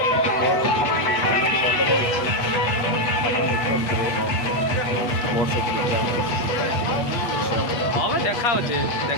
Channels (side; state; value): right; late; 8.4 ms